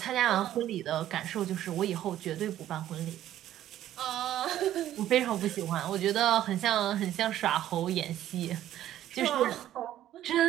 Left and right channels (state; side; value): quieter; left; 12.5 dB